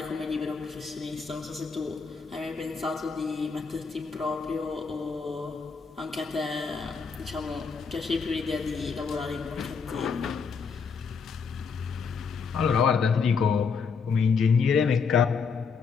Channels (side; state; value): right; quieter; 5.5 dB